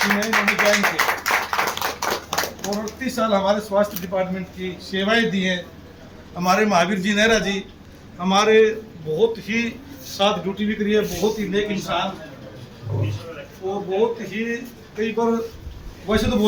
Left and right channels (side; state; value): both; identical; correlation 1.00